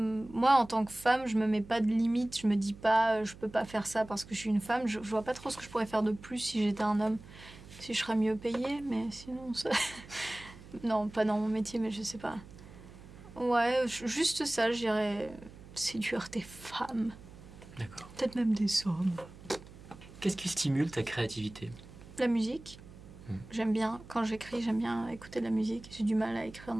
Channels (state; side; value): noise; right; hum, 18 dB below the sound